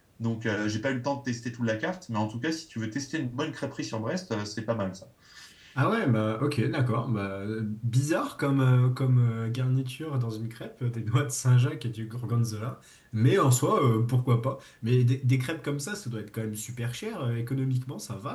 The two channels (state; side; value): identical; both; correlation 1.00